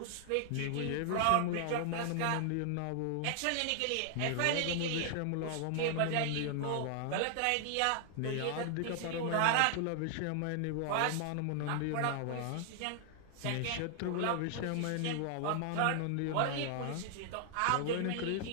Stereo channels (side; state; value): both; different; correlation 0.00